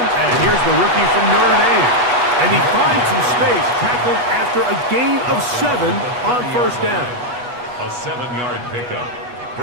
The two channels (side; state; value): left; late; 8.2 ms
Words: here's the rookie from Notre Dame. And he finds some space, tackled after a gain of 7 on first down. A 7-yard pickup